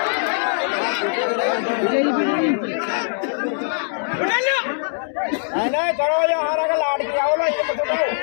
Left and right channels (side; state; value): right; silent; digital silence